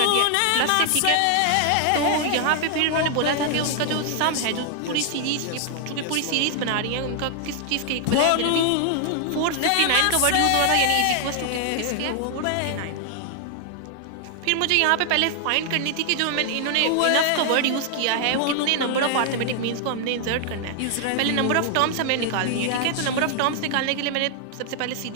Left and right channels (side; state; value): both; different; correlation 0.00